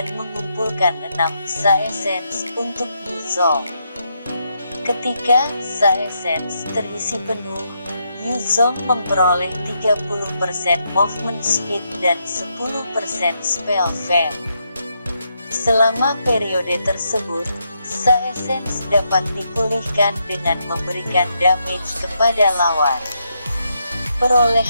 mengumpulkan 6 Sa Essence untuk Yuzong. Ketika Sa Essence terisi penuh, Yuzong memperoleh 30% movement speed dan 10% spell fam. Selama periode tersebut, Sa Essence dapat dipulihkan dengan memberikan damage kepada lawan.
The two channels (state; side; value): inverted; both; correlation -0.80